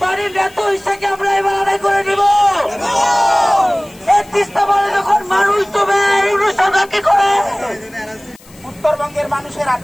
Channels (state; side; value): noise; left; hiss, 25 dB below the sound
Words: আমরা এবার আদায় করে নিব। যখন মানুষ তবে সরকারকে করে উত্তরবঙ্গের মানুষের